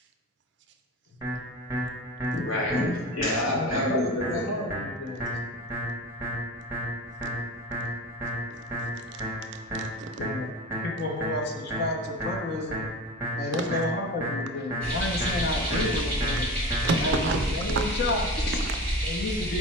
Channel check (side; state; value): both; normal; correlation 0.31